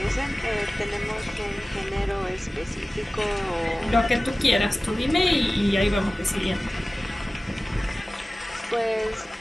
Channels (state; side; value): normal; both; correlation 0.97